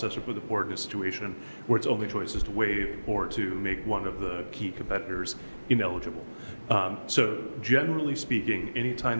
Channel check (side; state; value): both; inverted; correlation -1.00